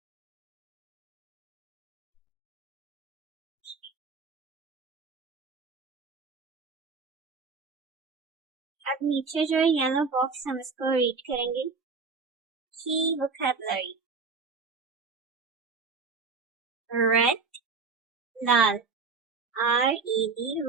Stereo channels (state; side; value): quieter; left; 4.7 dB